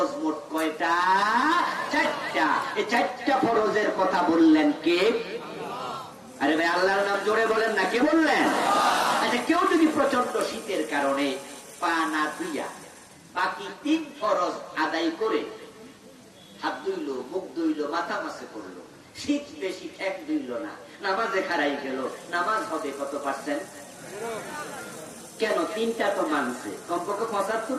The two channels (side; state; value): both; identical; correlation 1.00